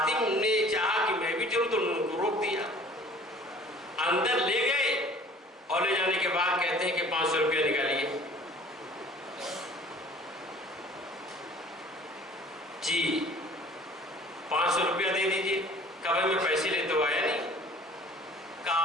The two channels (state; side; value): normal; both; correlation 0.49